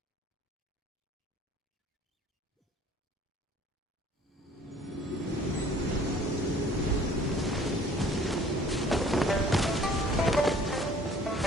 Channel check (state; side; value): normal; both; correlation 0.53